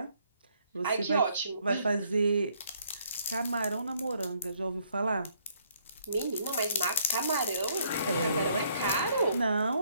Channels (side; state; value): both; inverted; correlation -0.68